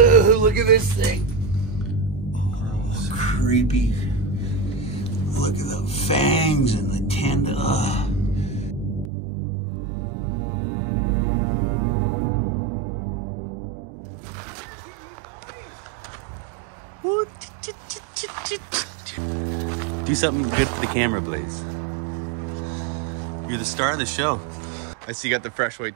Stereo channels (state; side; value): drops out; left; at 9.1 s